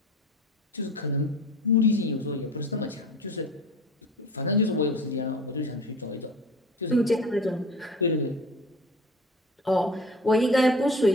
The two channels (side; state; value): both; normal; correlation 0.39